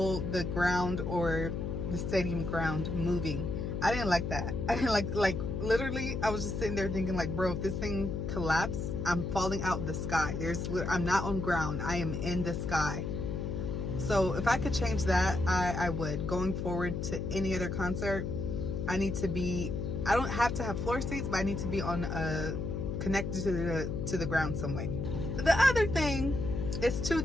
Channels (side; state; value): left; noise; hum, 3 dB below the sound